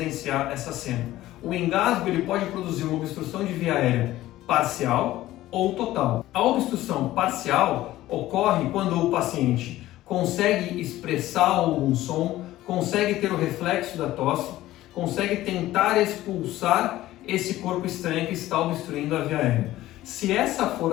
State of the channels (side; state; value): right; quieter; 15.4 dB